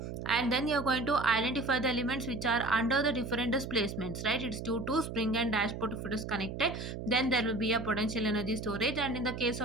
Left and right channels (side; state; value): right; noise; hum, 7 dB below the sound